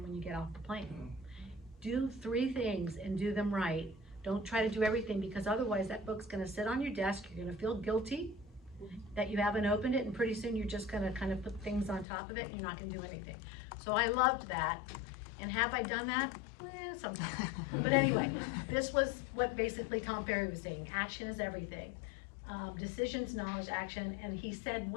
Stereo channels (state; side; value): drops out; right; at 12.1 s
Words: when you get off the plane. Do 3 things and do them right. Don't try to do everything, because otherwise that book's gonna sit on your desk, you're gonna feel guilty that you haven't opened it, and pretty soon you're just gonna kind of put things on top of it and you're not gonna do anything. So I loved that, and have I done that? Sometimes. But anyway, this was what basically Tom Ferry was saying, action is everything. Decisions, knowledge, action, and he said